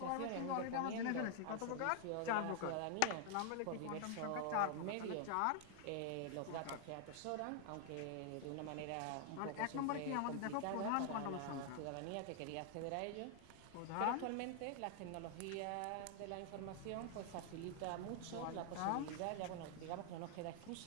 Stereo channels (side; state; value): both; different; correlation 0.00